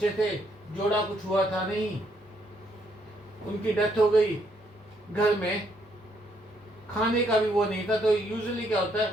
थे, जोड़ा कुछ हुआ था नहीं। उनकी डेथ हो गई, घर में खाने का भी वो नहीं था। तो यूजुअली क्या होता है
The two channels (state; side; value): normal; both; correlation 0.72